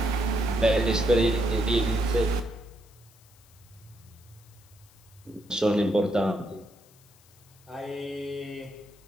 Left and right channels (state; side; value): noise; left; hiss, 28 dB below the sound